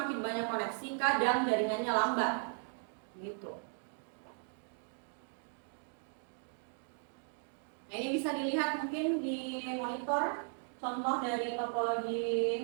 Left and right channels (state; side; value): silent; left; 53 dB below the other